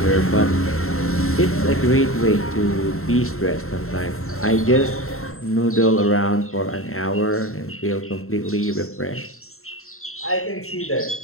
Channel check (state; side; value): late; right; 0.62 ms